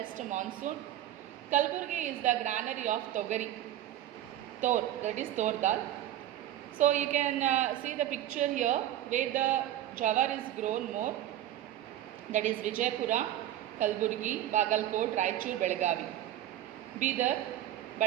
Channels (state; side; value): quieter; left; 12.6 dB